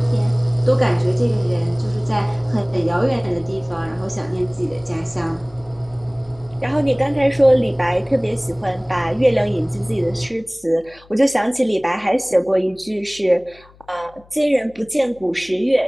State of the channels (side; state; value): left; noise; hum, 27 dB below the sound